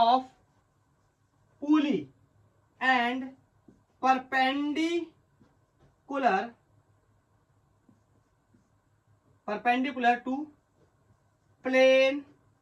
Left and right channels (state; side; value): identical; both; correlation 1.00